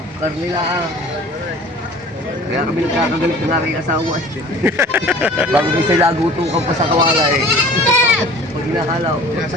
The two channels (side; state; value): both; normal; correlation 0.46